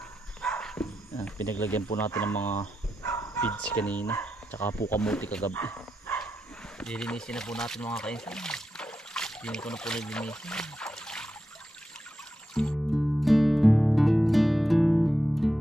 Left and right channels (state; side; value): normal; both; correlation 0.87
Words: Yan, pinaglagyan po natin ng mga feeds kanina, tsaka po kamuti kagabi. Lilinisin na po natin mga kainsan. Dini ko na po lilinisin.